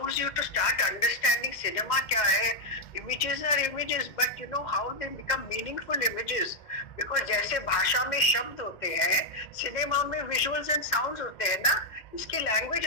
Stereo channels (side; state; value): right; late; 2.0 ms